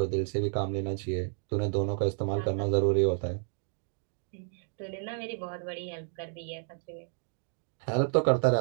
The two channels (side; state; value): left; silent; 57 dB below the other